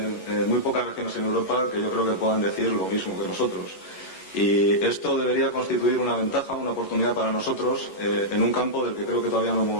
regiones en Europa que yo creo que puedan decir lo mismo que nosotros. Y esto debería constituir una ventaja, una oportunidad para nosotros en un campo del que creo que todavía no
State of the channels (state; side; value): late; right; 11 ms